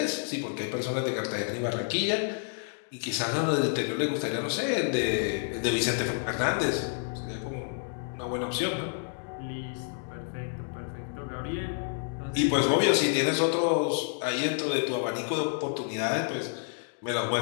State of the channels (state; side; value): silent; right; 58 dB below the other